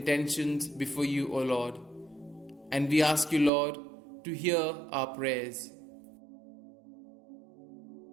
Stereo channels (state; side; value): drops out; left; at 3.5 s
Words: before you, O Lord. And we ask you, Lord, to hear our prayers.